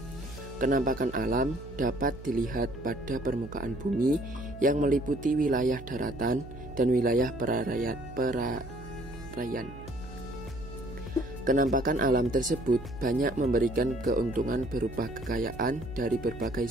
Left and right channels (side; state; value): right; noise; hum, 14 dB below the sound